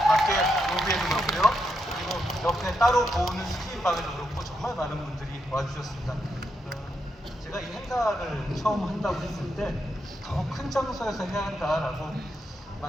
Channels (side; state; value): both; normal; correlation 0.82